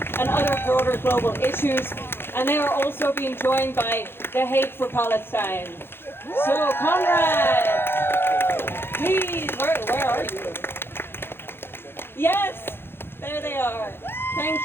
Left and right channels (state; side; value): late; right; 0.11 ms